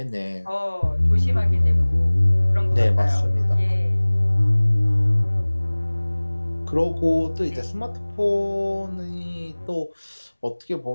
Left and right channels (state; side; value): inverted; both; correlation -1.00